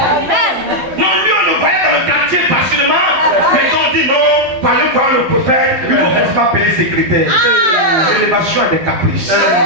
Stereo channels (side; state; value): left; late; 11 ms